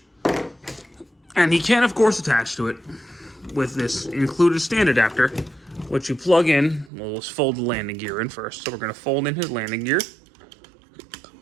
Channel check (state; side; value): drops out; left; at 6.9 s